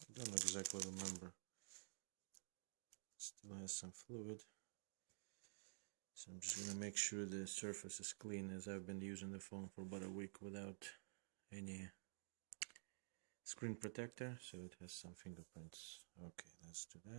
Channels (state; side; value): silent; left; digital silence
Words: don't exactly remember. Still has some fluid. So I'm just going to make sure the surface is clean, as I've been using the phone for about a week without any screen protector, so it has some fingerprints. Okay, let's do